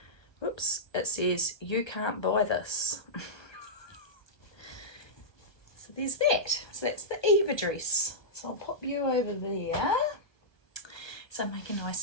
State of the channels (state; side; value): late; right; 1.2 ms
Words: Whoops, it says, "You can't buy this." So there's that. So that's the Eva dress. So I'll pop you over there. So make a